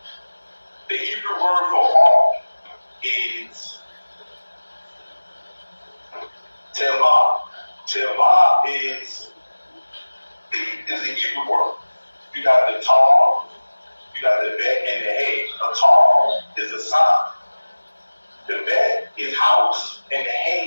The Hebrew word for ark is tevah. Tevah is the Hebrew word. You got the tar, you got the bet, and the hay. A tar is a sign. The bet is house, and the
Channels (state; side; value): inverted; both; correlation -1.00